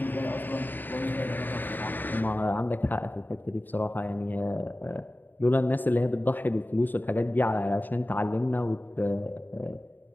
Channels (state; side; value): late; right; 0.090 ms